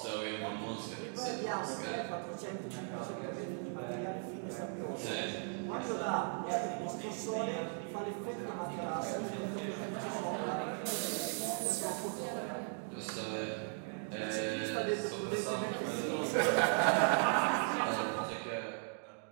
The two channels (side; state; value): left; silent; 53 dB below the other